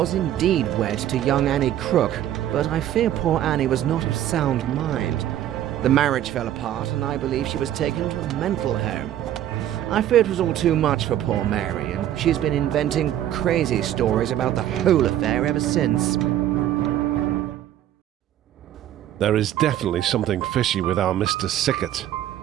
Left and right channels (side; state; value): left; quieter; 11.9 dB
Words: indeed wed to young Annie Crook, but I fear poor Annie was not of sound mind. The marriage fell apart, and I believe she was taken to a mental home. I fear it was all too much for poor Mary, and she's been inventing crazy stories about the whole affair ever since. There is definitely something fishy with our Mr. Sickert.